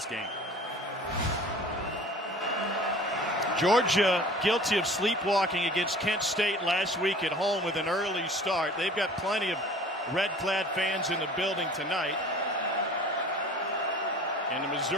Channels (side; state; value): both; normal; correlation 0.45